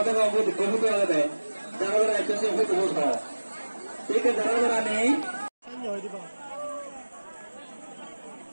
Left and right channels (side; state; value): both; inverted; correlation -1.00